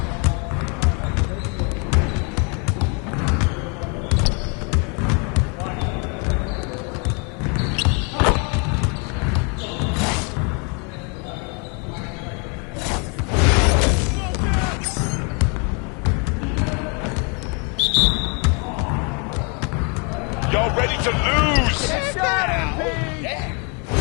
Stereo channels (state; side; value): quieter; right; 34.9 dB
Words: Y'all ready to lose?